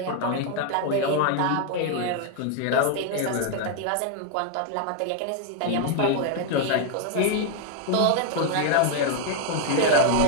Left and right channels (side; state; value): both; different; correlation 0.00